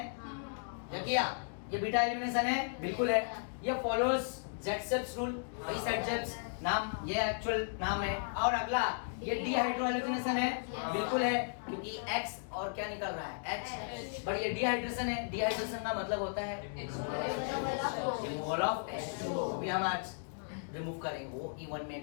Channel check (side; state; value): right; silent; digital silence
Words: क्या ये बीटा एलिमिनेशन है, बिल्कुल है, ये फॉलोज जेक्सेप्स रूल, वही सेटजेप्स नाम, ये एक्चुअल नाम है। और अगला ये डीहाइड्रोहाइड्रोजनेशन है, बिल्कुल है, क्योंकि X और क्या निकल रहा है, H, बट ये डिहाइड्रेशन है, डिहाइड्रेशन का मतलब होता है रिमूवल ऑफ H2, भी हम आज रिमूव करेंगे, वो E1 में